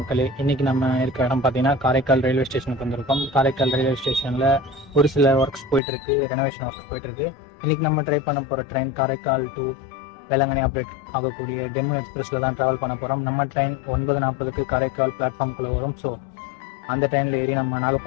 இன்றைக்கி நம்ம இருக்க இடம் பார்த்தீங்கன்னா காரைக்கால் ரயில்வே ஸ்டேஷனுக்கு வந்திருக்கோம். காரைக்கால் ரயில்வே ஸ்டேஷனில் ஒரு சில ஒர்க்ஸ் போயிட்டுருக்கு, ரெனோவேஷன் ஒர்க்ஸ் போயிட்டுருக்கு. இன்றைக்கி நம்ம ட்ரை பண்ண போகிற train Karaikal to Velankanni operate ஆகக்கூடிய டெமோ எக்ஸ்பிரஸில் தான் ட்ராவல் பண்ண போகிறோம். நம்ம ட்ரெயின் 9:40 காரைக்கால் பிளாட்ஃபார்முக்குள்ளே வரும். ஸோ அந்த ட்ரெயினில் ஏறி நம்ம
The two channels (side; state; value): right; drops out; at 5.8 s